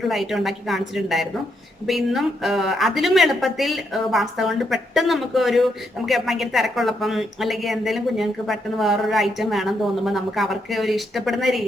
ഐറ്റം ഉണ്ടാക്കി കാണിച്ചിട്ടുണ്ടായിരുന്നു. അപ്പൊ ഇന്നും അതിലും എളുപ്പത്തിൽ പാസ്ത കൊണ്ട് പെട്ടെന്ന് നമുക്ക് ഭയങ്കര തിരക്കുള്ളപ്പം അല്ലെങ്കിൽ എന്തെങ്കിലും കുഞ്ഞുങ്ങൾക്ക് പെട്ടെന്ന് വേറൊരു ഐറ്റം വേണം തോന്നുമ്പോൾ നമുക്ക് അവർക്ക് ഒരു ഇഷ്ടപ്പെടുന്ന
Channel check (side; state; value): both; normal; correlation 0.78